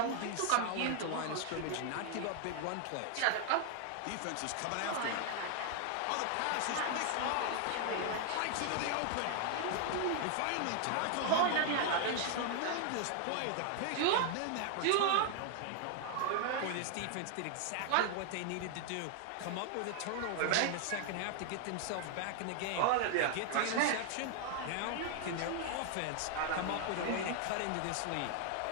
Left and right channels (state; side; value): different; both; correlation 0.00